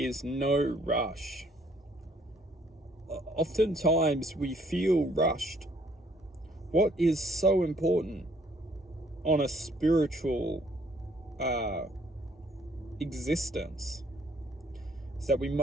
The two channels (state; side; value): normal; both; correlation 0.64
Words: no rush. Oftentimes we feel rushed. What is so important on a spiritual existence is that we